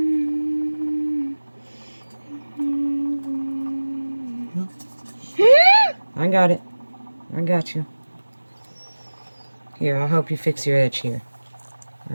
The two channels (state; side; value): inverted; both; correlation -1.00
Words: I got it. I got you. Here, I'll help you fix your edge here.